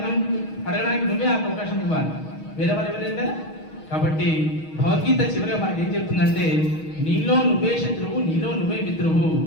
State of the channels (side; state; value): right; late; 6.3 ms